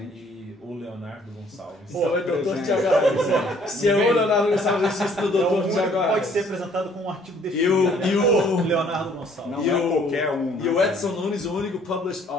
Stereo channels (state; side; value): normal; both; correlation 0.60